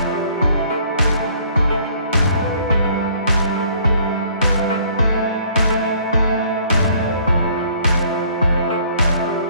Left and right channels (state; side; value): inverted; both; correlation -0.59